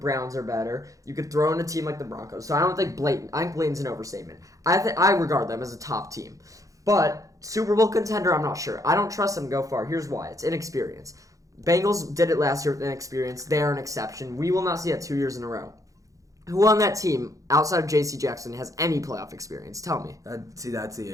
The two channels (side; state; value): left; late; 0.16 ms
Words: are better. You could throw in a team like the Broncos. So I don't think blatant. I think blatant's an overstatement. I regard them as a top team. But Super Bowl contender, I'm not sure. I don't trust them to go far. Here's why. It's inexperience. Bengals did it last year with inexperience. They are an exception. We will not see that 2 years in a row. Who on that team, outside of J.C. Jackson, has any playoff experience? Tell me. That's the